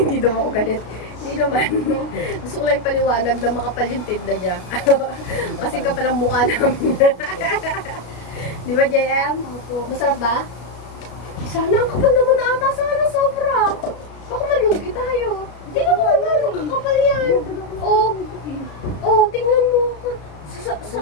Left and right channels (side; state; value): right; late; 33 ms